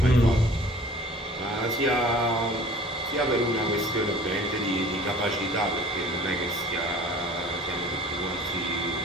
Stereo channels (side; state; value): both; normal; correlation 0.47